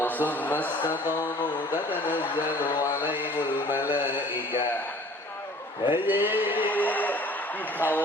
tsumma istaqamu tatanazzalu 'alaihimul malaikah. Hei,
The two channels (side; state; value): both; normal; correlation 0.50